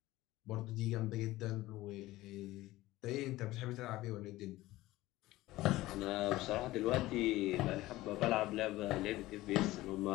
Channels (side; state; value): right; quieter; 17.5 dB